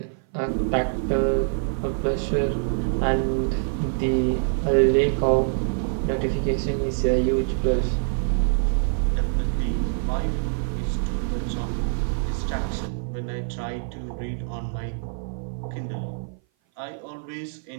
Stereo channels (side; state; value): left; silent; 56 dB below the other